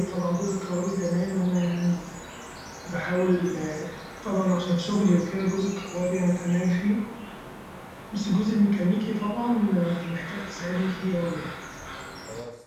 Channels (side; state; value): both; identical; correlation 1.00